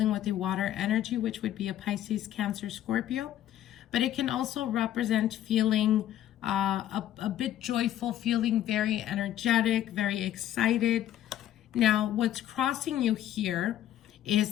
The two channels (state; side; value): quieter; right; 12.0 dB